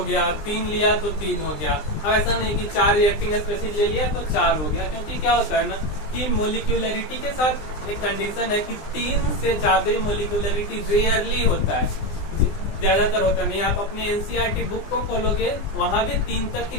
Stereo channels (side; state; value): right; late; 20 ms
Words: गया, 3 लिया तो 3 हो गया। अब ऐसा नहीं कि 4 रिएक्टिंग स्पेसीज ले लिया तो 4 हो गया, क्योंकि क्या होता है ना कि मोलिक्यूलरिटी के साथ एक कंडीशन है कि 3 से ज्यादा मोलिक्यूलरिटी रेयरली होता है, ज्यादातर होता नहीं। आप अपने एनसीईआरटी बुक को खोलोगे, वहां भी 3 तक ही